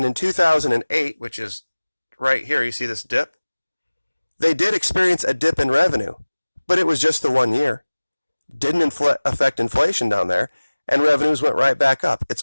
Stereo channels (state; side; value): inverted; both; correlation -1.00